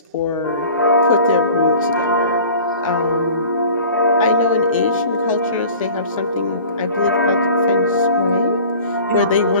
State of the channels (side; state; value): both; inverted; correlation -0.44